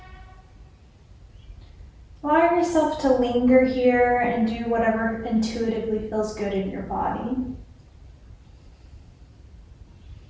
Allow yourself to linger here and do whatever intuitively feels good in your body.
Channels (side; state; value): both; identical; correlation 1.00